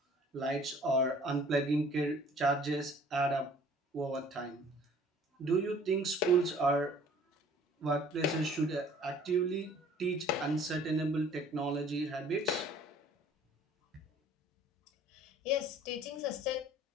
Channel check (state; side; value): normal; both; correlation 0.53